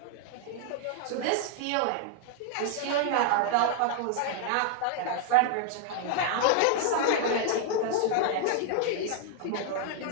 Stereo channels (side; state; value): both; different; correlation 0.00